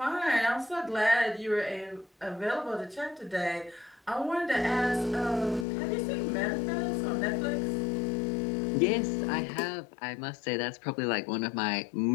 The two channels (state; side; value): drops out; right; at 5.7 s